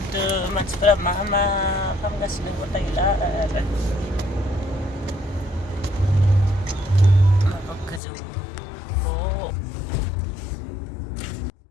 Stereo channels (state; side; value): drops out; right; at 8.0 s